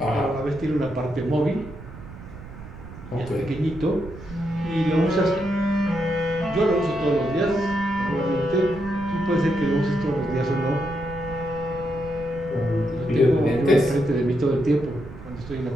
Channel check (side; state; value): right; noise; rumble, 14 dB below the sound